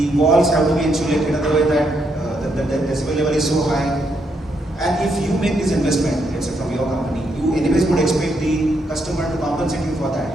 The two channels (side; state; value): both; normal; correlation 0.77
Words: walls have to be insulated in a way that the decibel level is so high. And if you make this investment, let's say from your company, you anyways would expect the customer to compensate you for